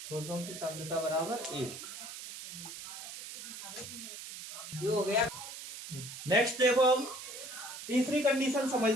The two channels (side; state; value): right; noise; hiss, 10 dB below the sound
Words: ठोसों की सांद्रता बराबर 1। ये हो गया। नेक्स्ट देखो, हम तीसरी कंडीशन